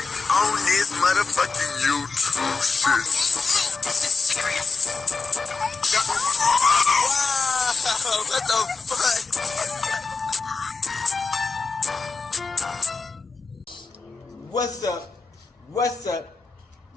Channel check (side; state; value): right; quieter; 4.3 dB